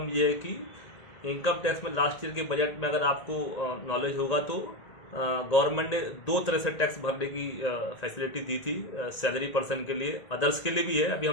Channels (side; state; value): right; late; 1.9 ms